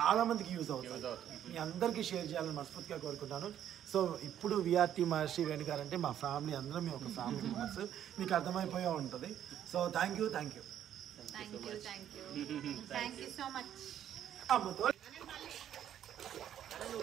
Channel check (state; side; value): quieter; left; 10.5 dB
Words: మందికి యూజ్ అవుతుంది. మీ అందరికీ షేర్ చేయాలని మనస్ఫూర్తిగా కోరుకుంటాను. సో ఇప్పుడు విఆర్టీ మహర్షి వేణు గారు అంటే మా ఫ్యామిలీ, అందరం మేము ఒక ఫ్యామిలీ మెంబర్స్. మీకు అర్థమైపోయే ఉంటుంది. So thank you so much. అమ్మతో నువ్వు